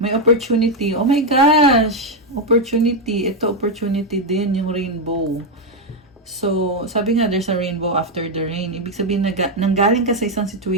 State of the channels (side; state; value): both; normal; correlation 0.03